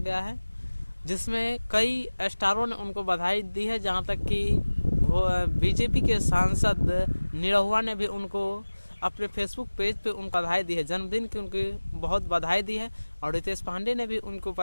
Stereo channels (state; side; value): inverted; both; correlation -1.00